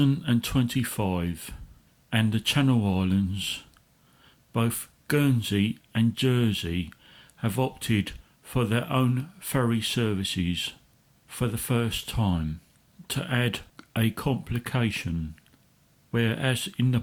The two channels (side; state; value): both; identical; correlation 1.00